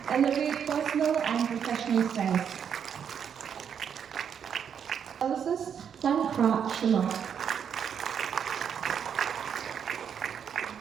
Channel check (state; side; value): quieter; left; 7.8 dB